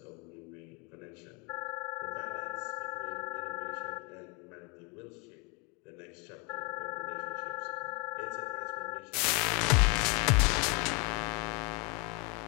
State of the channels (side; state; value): right; quieter; 31.2 dB